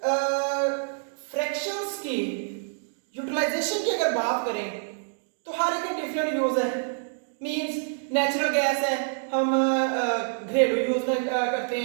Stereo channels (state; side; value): silent; left; digital silence